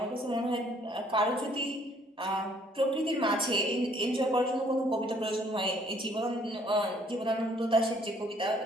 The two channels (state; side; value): normal; both; correlation 0.62